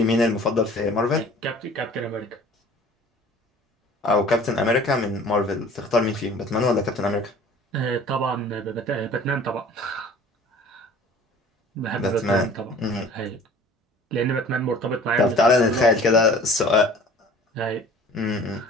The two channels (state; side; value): normal; both; correlation 0.47